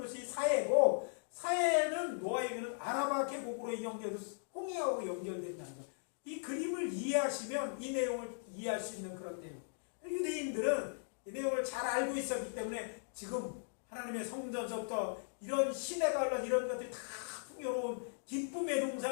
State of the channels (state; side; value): silent; right; digital silence